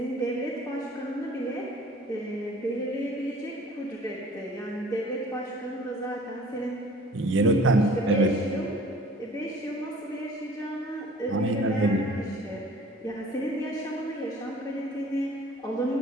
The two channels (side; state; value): both; normal; correlation 0.50